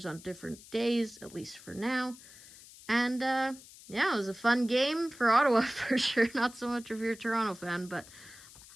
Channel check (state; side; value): noise; left; hiss, 20 dB below the sound